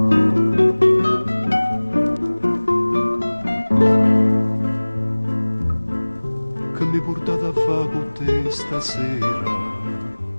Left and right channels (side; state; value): both; inverted; correlation -1.00